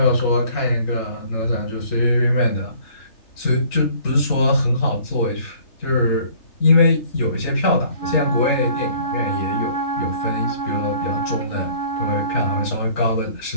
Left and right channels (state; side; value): late; right; 3.3 ms